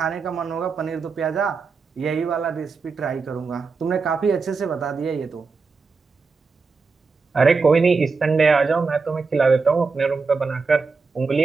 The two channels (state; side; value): quieter; left; 4.6 dB